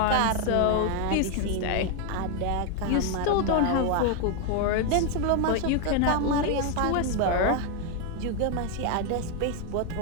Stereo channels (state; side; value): different; both; correlation 0.01